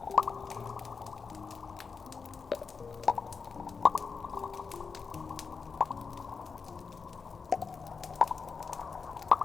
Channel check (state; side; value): quieter; right; 5.2 dB